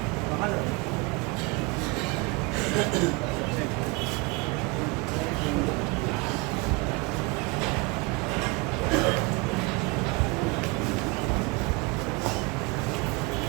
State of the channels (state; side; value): quieter; left; 26.2 dB